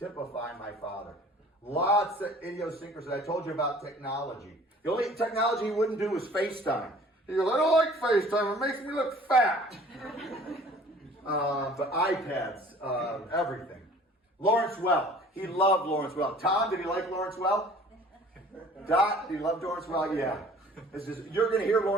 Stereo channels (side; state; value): both; normal; correlation 0.50